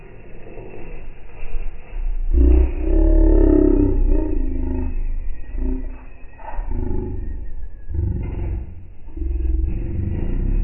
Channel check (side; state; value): both; identical; correlation 1.00